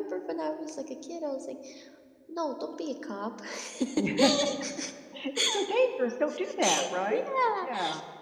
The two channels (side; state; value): both; identical; correlation 1.00